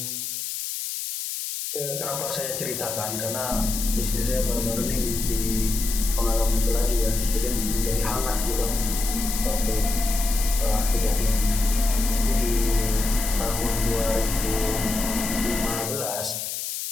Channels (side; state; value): left; noise; hiss, 4 dB below the sound